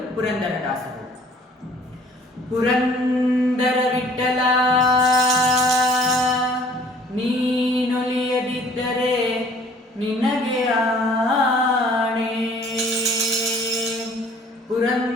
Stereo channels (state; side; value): normal; both; correlation 0.54